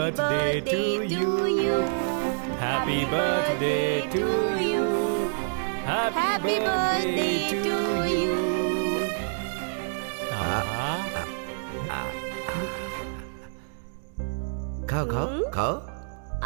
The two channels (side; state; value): left; silent; digital silence